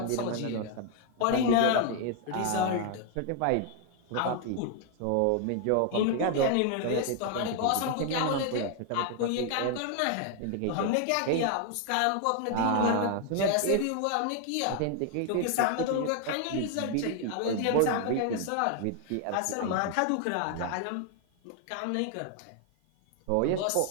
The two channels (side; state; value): both; different; correlation 0.00